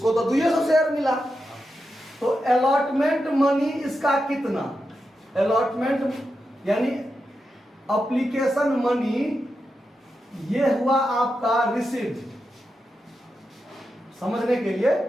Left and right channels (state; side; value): normal; both; correlation 0.88